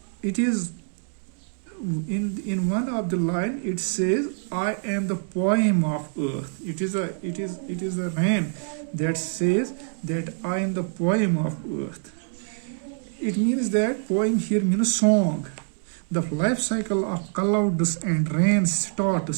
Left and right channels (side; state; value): left; silent; 61 dB below the other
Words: it is in one of the line it says, I am the poem of earth. It is a rain that says that I am the poem of earth. It means that poem here means song. The life cycle of clouds and rain